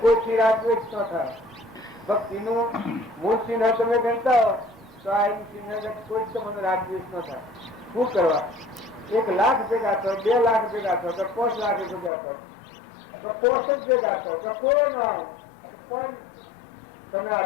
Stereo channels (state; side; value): drops out; right; at 12.1 s